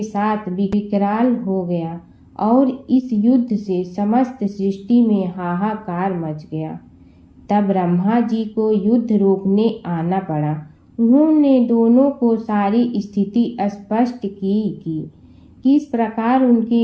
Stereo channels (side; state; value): both; identical; correlation 1.00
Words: साथ विकराल हो गया और इस युद्ध से समस्त सृष्टि में हाहाकार मच गया। तब ब्रह्मा जी को युद्ध रोकने आना पड़ा। उन्होंने दोनों को सारी स्थिति स्पष्ट की कि किस प्रकार उनके